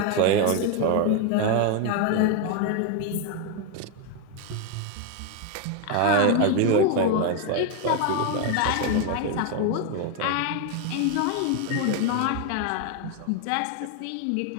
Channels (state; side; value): different; both; correlation 0.01